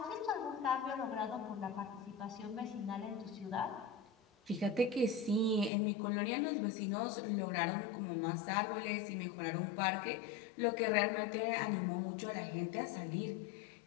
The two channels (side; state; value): right; drops out; at 5.7 s